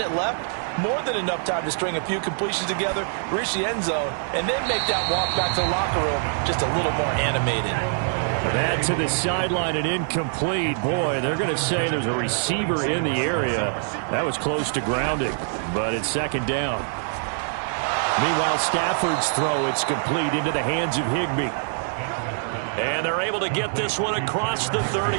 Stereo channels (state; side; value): silent; left; 62 dB below the other